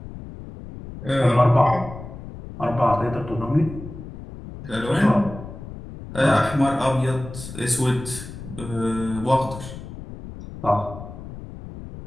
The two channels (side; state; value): left; noise; rumble, 12 dB below the sound